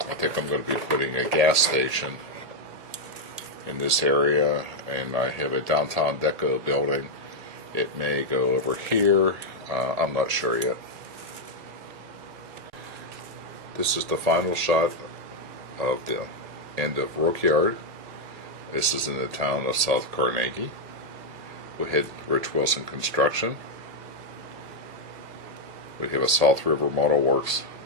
think I'm going to be putting a gas station in this area. And I have a downtown deco building. It may go over here. I'm not sure yet. This is the final shot of the end of Rook Yard. This is in the town of South Carnegie. We had Rich Wilson Construction. We have a South River Model Works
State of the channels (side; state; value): left; late; 1.8 ms